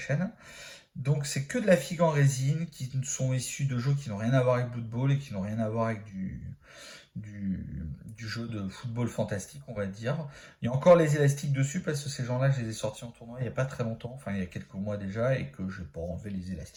Donc c'est que de la figue en résine qui sont issus de jeux qui n'ont rien à voir avec Blood Bowl et qui n'ont rien à voir avec du jeu de football fantastique, on va dire. Il y a encore les élastiques dessus parce que ces gens-là, je les ai sortis en tournoi il n'y a pas très longtemps, enfin il y a quelques mois déjà, et que je n'ai pas enlevé les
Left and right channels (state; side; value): identical; both; correlation 1.00